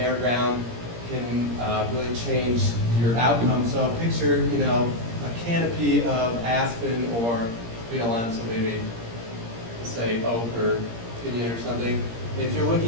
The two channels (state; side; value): late; left; 17 ms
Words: ground can really change your outcome. So picture, a canopy of aspen or BLM, so maybe say oak or pinyon or something. If you're